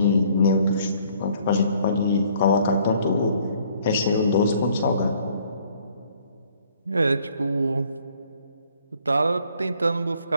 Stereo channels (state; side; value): inverted; both; correlation -0.61